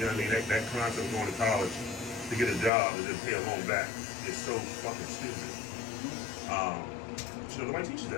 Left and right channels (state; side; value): drops out; right; at 2.7 s